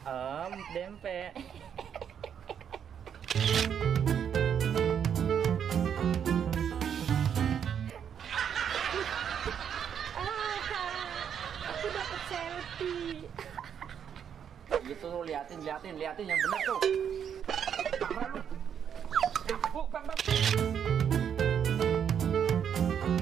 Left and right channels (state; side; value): quieter; left; 8.3 dB